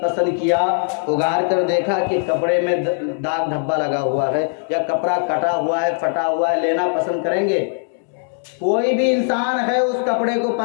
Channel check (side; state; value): right; silent; digital silence